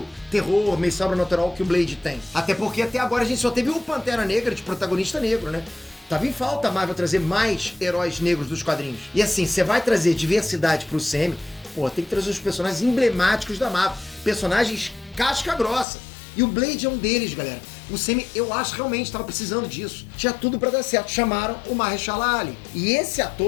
terror, meio sobrenatural que o Blade tem. Até porque até agora a gente só teve o Pantera Negra de protagonista negro, né? Tava em falta a Marvel trazer mais heróis negros dos quadrinhos. E assim, você vai trazer diversidade pro Sam, pô, tem que trazer os personagens emblemáticos da Marvel. Personagens casca grossa. E o Blade é um deles, galera. O Sam, eu acho, realmente tava precisando disso. Tinha tudo pra dar certo. Chamaram o Mahershala Ali. E esse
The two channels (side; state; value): right; drops out; at 15.9 s